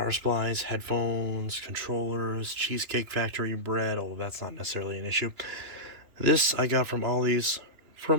supplies, headphones, controllers, Cheesecake Factory bread, although that's not necessarily an issue. This I got from Ollie's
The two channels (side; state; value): left; late; 3.0 ms